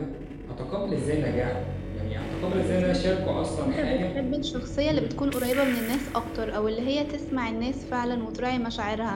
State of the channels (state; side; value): identical; both; correlation 1.00